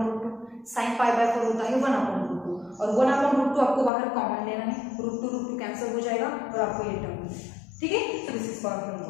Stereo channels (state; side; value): drops out; right; at 3.9 s